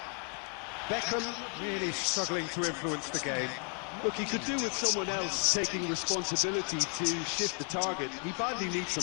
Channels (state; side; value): quieter; right; 37.0 dB